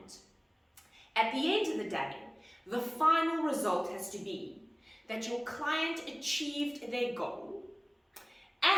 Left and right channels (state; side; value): identical; both; correlation 1.00